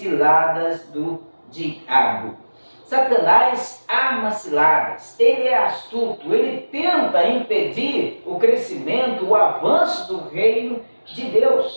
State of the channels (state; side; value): inverted; both; correlation -1.00